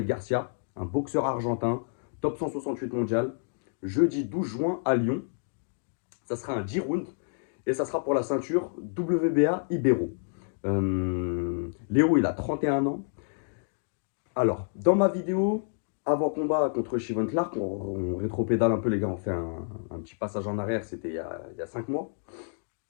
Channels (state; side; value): silent; right; digital silence